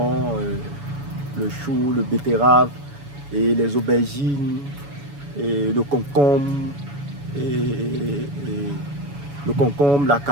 le chou, le betterave, et les aubergines, et le concombre, le concombre, la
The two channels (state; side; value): late; left; 7.1 ms